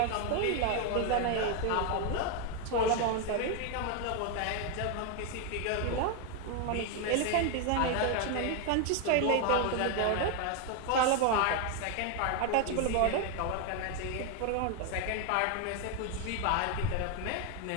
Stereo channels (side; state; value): both; different; correlation 0.01